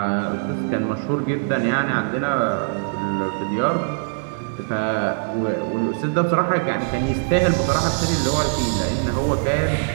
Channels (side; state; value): left; silent; digital silence